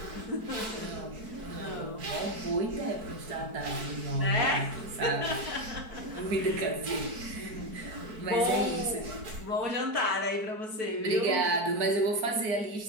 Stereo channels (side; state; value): left; late; 4.6 ms